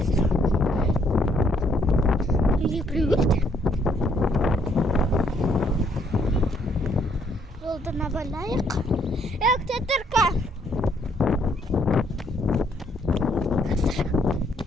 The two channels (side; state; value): both; normal; correlation 0.69